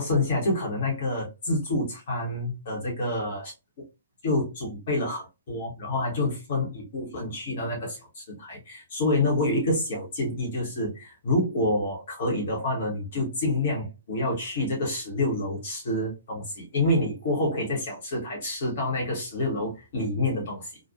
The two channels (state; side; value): inverted; both; correlation -0.43